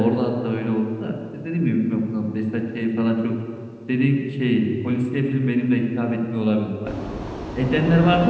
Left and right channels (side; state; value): both; identical; correlation 1.00